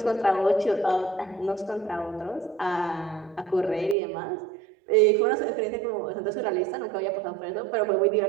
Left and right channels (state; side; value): drops out; left; at 4.0 s